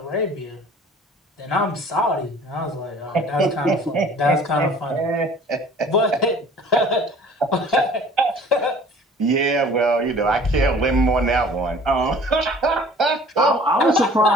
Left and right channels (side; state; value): both; normal; correlation 0.49